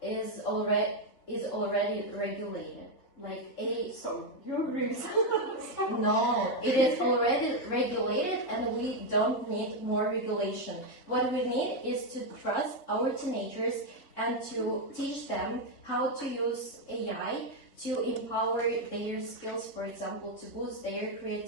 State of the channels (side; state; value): right; late; 4.0 ms